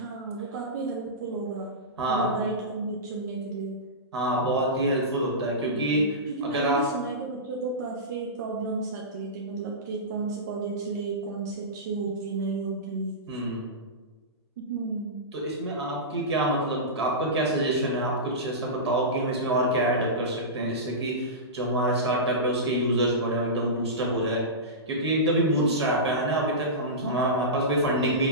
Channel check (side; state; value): both; normal; correlation -0.18